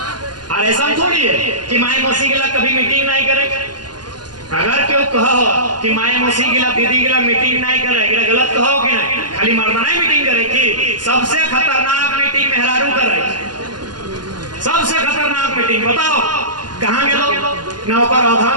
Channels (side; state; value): left; late; 0.70 ms